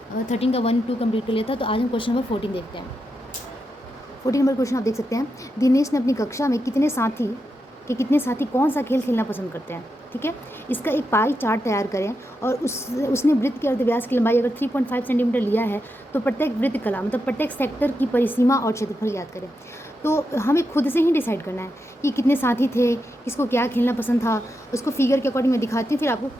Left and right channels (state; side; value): normal; both; correlation 0.86